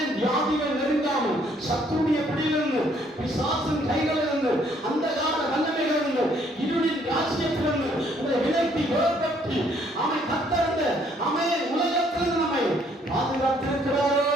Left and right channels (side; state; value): both; normal; correlation 0.65